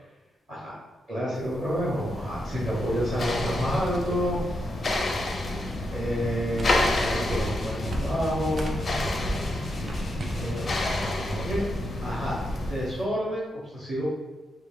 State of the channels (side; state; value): both; normal; correlation 0.83